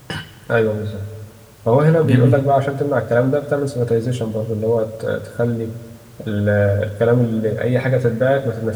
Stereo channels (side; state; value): both; identical; correlation 1.00